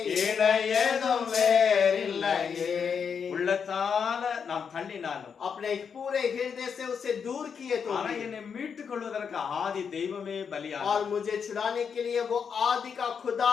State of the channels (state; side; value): quieter; right; 6.6 dB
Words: இணை எதுவும் வேறில்லையே. உள்ளத்தால நாம் தள்ளினாலும் अपने पूरे हृदय से उसे दूर किए तो ஆனா भी, என்னை மீட்டுக் கொள்வதற்கு ஆதி தெய்வமே பலியானார். और मुझे छुड़ाने के लिए वो आदि का खुदा